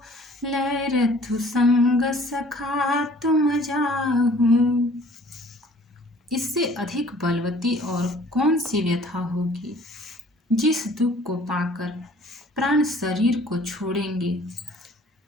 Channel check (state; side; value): normal; both; correlation 0.53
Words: लय रथु संग सखा तुम जाहु। इससे अधिक बलवती और कौन सी व्यथा होगी। जिस दुख को पाकर प्राण शरीर को छोड़ेंगे।